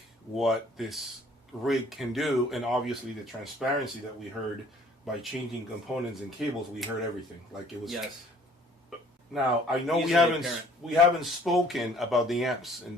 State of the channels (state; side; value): normal; both; correlation 0.56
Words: what this rig can do, and obviously the transparency that we heard by changing components and cables. We heard everything. Like it was. Yes. Now I know Easily we haven't spoken about the amps,